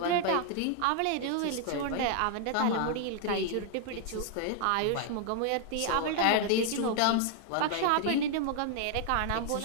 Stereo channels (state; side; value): different; both; correlation 0.00